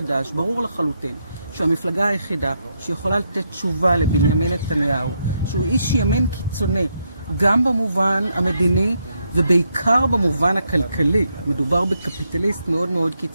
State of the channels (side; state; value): both; inverted; correlation -0.79